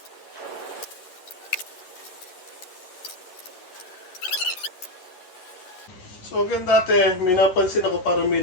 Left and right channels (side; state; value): right; late; 11 ms